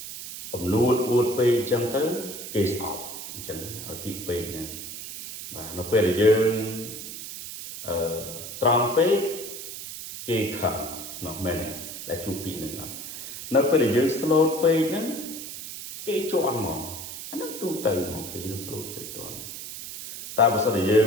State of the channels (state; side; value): noise; right; hiss, 9 dB below the sound